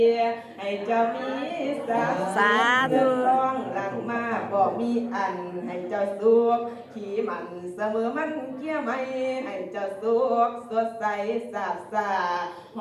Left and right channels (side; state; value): both; identical; correlation 1.00